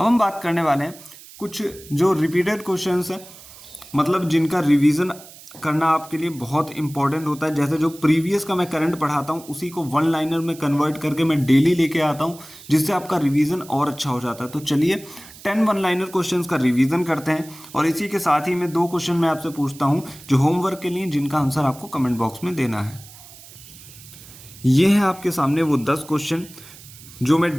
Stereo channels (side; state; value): right; noise; hiss, 19 dB below the sound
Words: हम बात करने वाले हैं कुछ जो रिपीटेड क्वेश्चंस हैं, मतलब जिनका रिवीजन करना आपके लिए बहुत इंपॉर्टेंट होता है। जैसे जो प्रीवियस का मैं करंट पढ़ाता हूँ उसी को वन लाइनर में कन्वर्ट करके मैं डेली लेके आता हूँ, जिससे आपका रिवीजन और अच्छा हो जाता है। तो चलिए 10 वन लाइनर क्वेश्चंस का रिवीजन करते हैं और इसी के साथ ही मैं 2 क्वेश्चन मैं आपसे पूछता हूँ जो होमवर्क के लिए, जिनका आंसर आपको कमेंट बॉक्स में देना है। ये है आपके सामने वो 10 क्वेश्चन जो मैं